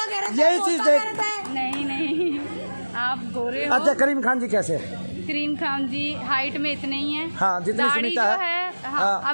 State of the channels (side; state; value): both; inverted; correlation -1.00